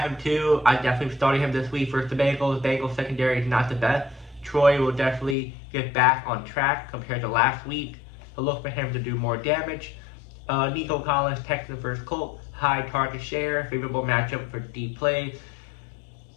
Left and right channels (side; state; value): right; drops out; at 5.4 s